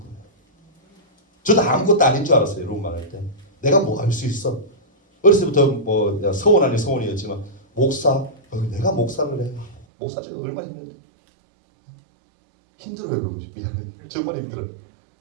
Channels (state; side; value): drops out; left; at 9.9 s